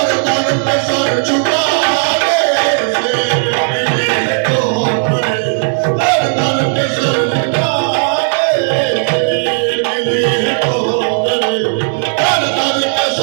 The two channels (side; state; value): left; silent; digital silence